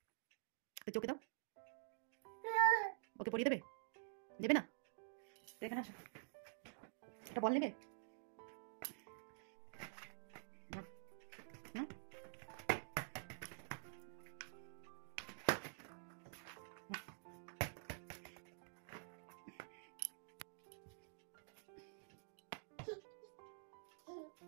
তো চোখে দাও, ওকে পরিয়ে দেবে? দেবে না? তো এখানে আসো, একটা বল নেবে? নাও, নাও।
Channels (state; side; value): silent; left; digital silence